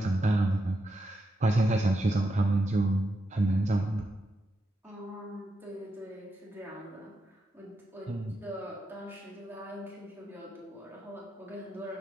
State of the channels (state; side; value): normal; both; correlation 0.85